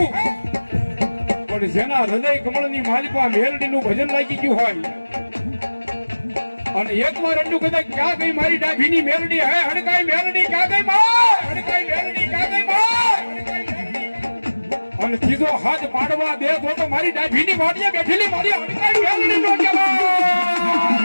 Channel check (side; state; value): both; inverted; correlation -1.00